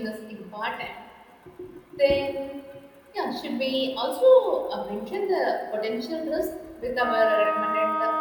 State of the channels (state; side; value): identical; both; correlation 1.00